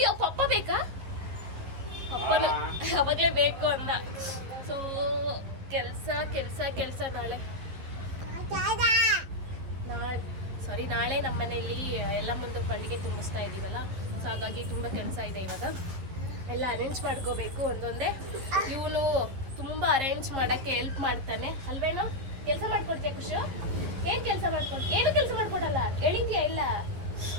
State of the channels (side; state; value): left; late; 11 ms